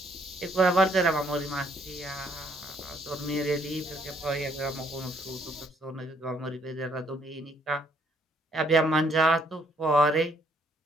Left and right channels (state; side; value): normal; both; correlation 0.68